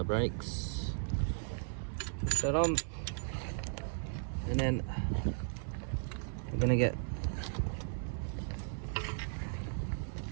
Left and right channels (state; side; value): silent; left; 54 dB below the other